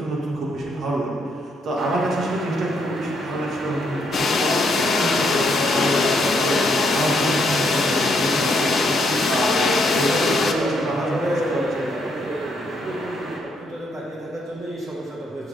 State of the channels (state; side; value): normal; both; correlation 0.74